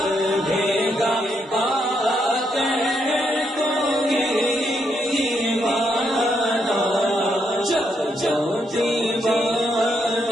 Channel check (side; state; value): both; normal; correlation 0.77